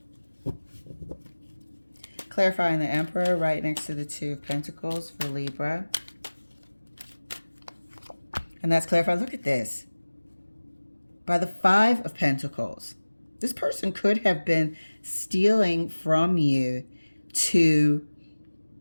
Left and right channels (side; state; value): both; inverted; correlation -1.00